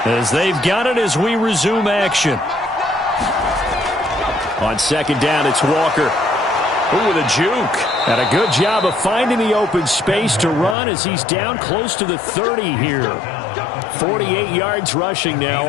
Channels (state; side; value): drops out; right; at 10.8 s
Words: As they've got it as we resume action. On 2nd down, it's Walker. Ooh, with a juke. And a good job of finding the open space to run as he's down close to the 30 here. 48 yards rushing now